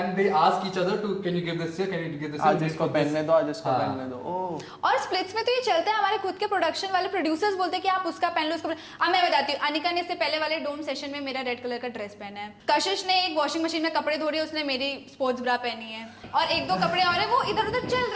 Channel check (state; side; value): identical; both; correlation 1.00